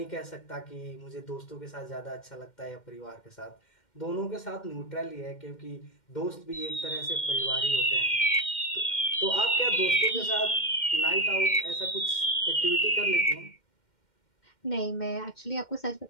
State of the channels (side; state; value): right; late; 2.1 ms